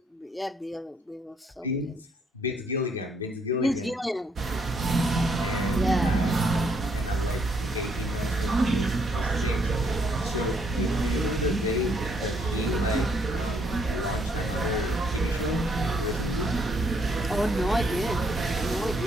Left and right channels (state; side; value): normal; both; correlation 0.70